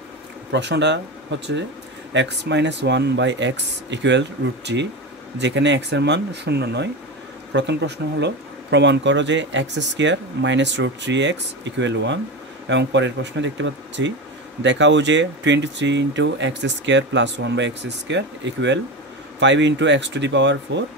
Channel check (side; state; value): both; normal; correlation 0.22